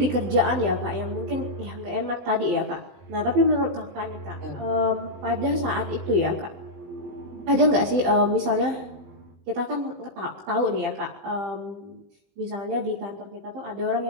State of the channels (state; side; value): late; left; 20 ms